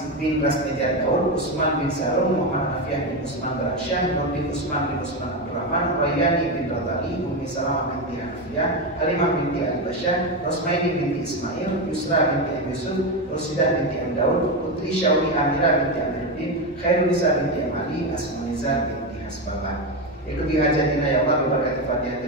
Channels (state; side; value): normal; both; correlation 0.13